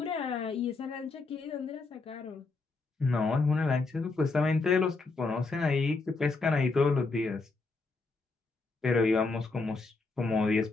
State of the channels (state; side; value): quieter; right; 3.8 dB